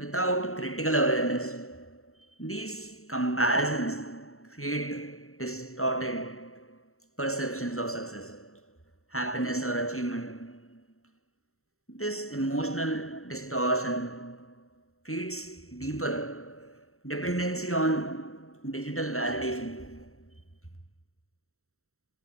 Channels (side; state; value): right; late; 0.63 ms